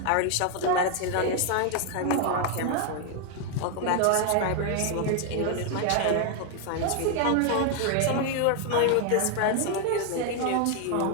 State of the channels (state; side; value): different; both; correlation 0.01